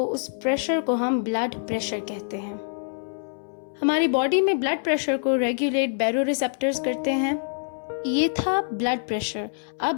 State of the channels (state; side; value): silent; right; 60 dB below the other